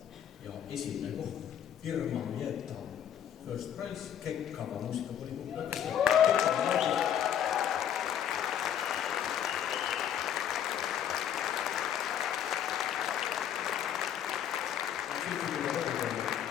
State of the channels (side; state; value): right; quieter; 9.7 dB